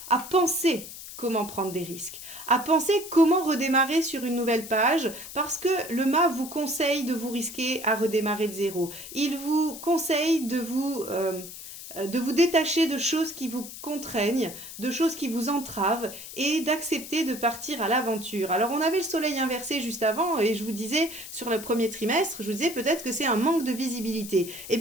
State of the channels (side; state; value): left; noise; hiss, 12 dB below the sound